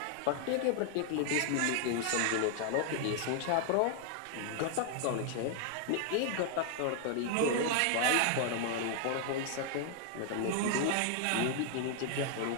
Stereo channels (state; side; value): different; both; correlation 0.00